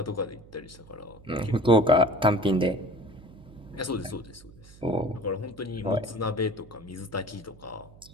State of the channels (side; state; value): right; noise; hum, 22 dB below the sound